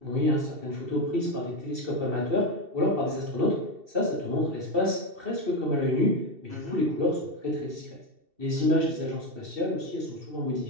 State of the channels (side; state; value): left; late; 2.7 ms